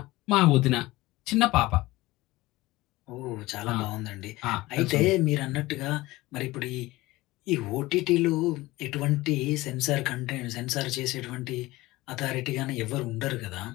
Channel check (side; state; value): right; quieter; 19.3 dB